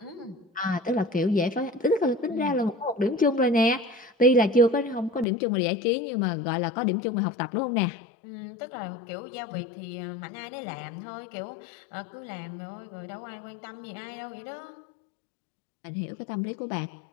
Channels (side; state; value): right; drops out; at 5.2 s